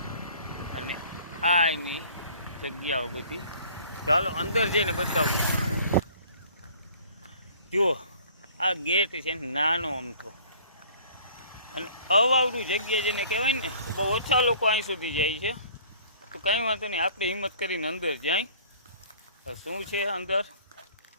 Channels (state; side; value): inverted; both; correlation -0.52